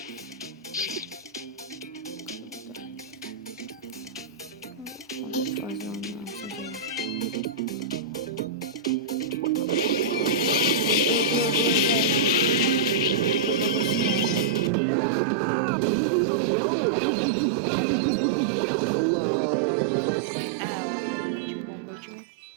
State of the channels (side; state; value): left; drops out; at 14.7 s